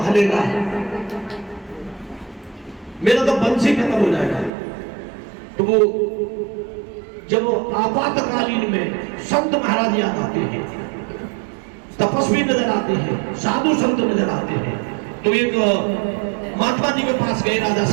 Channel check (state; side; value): drops out; left; at 4.5 s